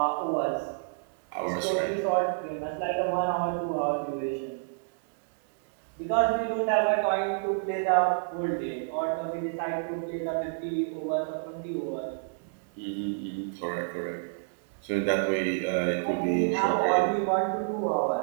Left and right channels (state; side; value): silent; left; digital silence